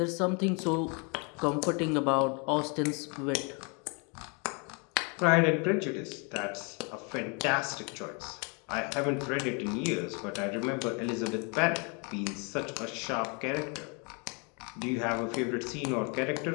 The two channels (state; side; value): quieter; right; 34.1 dB